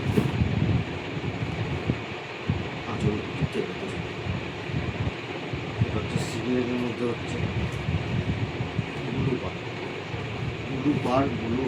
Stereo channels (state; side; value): identical; both; correlation 1.00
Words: আঁচল তুতের ভেতর। এটা হচ্ছে সিগনেটের মধ্যে হচ্ছে ব্লু পার ব্লু